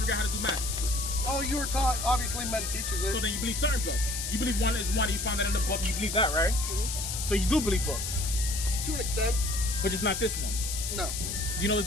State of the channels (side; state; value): left; noise; hiss, 4 dB below the sound